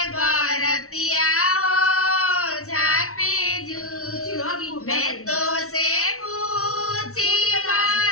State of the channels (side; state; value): right; late; 0.63 ms